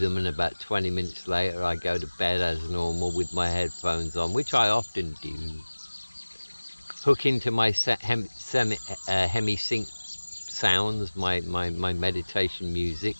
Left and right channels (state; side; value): inverted; both; correlation -1.00